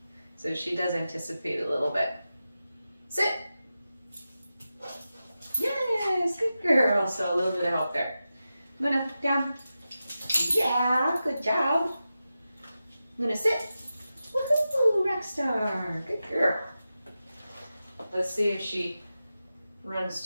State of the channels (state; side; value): inverted; both; correlation -0.92